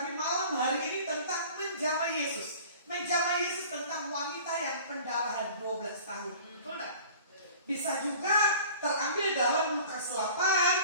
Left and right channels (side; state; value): both; inverted; correlation -0.44